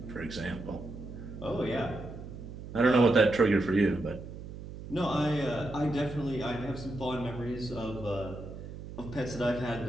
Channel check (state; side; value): noise; right; hum, 11 dB below the sound